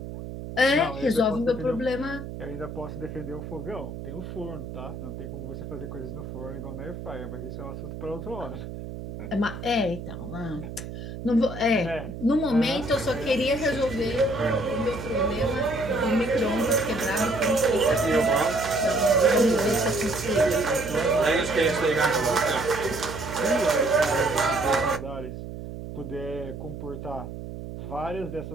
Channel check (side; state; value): right; noise; hum, 9 dB below the sound